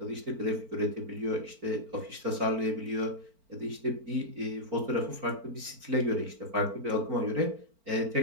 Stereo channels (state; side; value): late; left; 4.4 ms